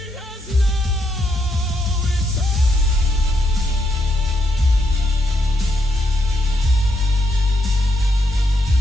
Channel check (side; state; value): both; normal; correlation 0.79